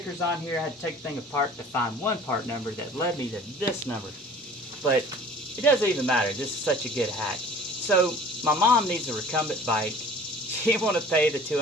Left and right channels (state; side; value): normal; both; correlation 0.47